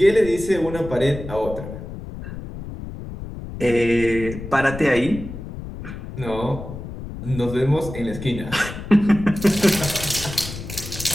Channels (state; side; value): noise; left; rumble, 10 dB below the sound